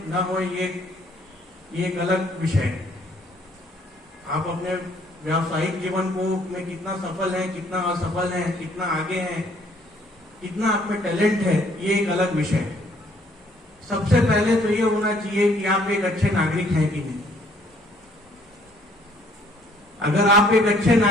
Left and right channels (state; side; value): normal; both; correlation 0.62